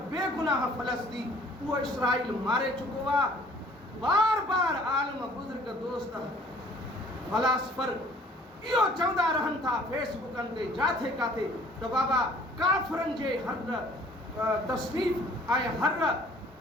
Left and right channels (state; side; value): normal; both; correlation 0.54